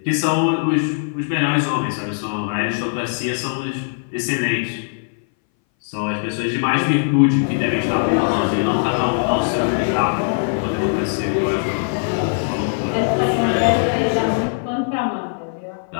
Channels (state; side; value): silent; right; 61 dB below the other